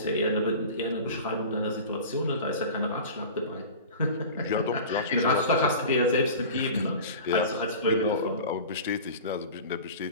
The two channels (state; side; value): inverted; both; correlation -0.35